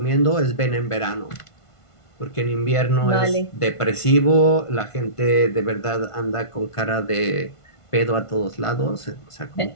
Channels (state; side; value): late; right; 1.5 ms